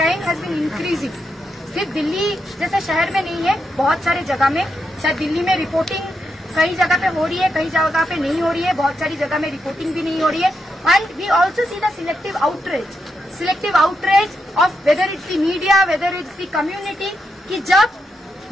has been increasing. सिर्फ दिल्ली जैसे शहर में नहीं है, बहुत सारे जगह में, शायद दिल्ली में रिपोर्टिंग कई जगह पे हो रही है, कई जगह पे नहीं हो रही है, बहुत सारी जगह में रिपोर्टिंग भी नहीं हो रही है। And we also see the selective outreach of whether it's the media, whether it's the community, कि जब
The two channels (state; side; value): normal; both; correlation 0.84